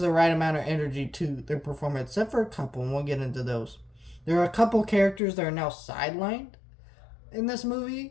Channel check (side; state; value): right; drops out; at 5.2 s